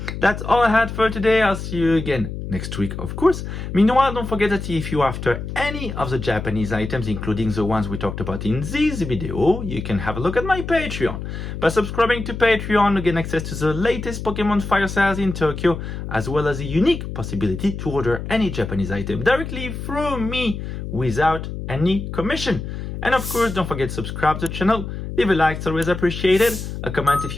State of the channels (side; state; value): left; noise; hum, 7 dB below the sound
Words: that's all I had for today. I'll see you again next week, of course. Meanwhile, don't forget that if you're after any of the Japanese items, including the ones we talked about in this video, you can have a look at my Patreon. By subscribing to Patreon, you get access to the latest Pokemon Fire sales in Tokyo, as well as a unique possibility to order any Japanese item directly through me without any commission. And of course, don't forget to subscribe to the channel, leave a like, it's always appreciated, a comment if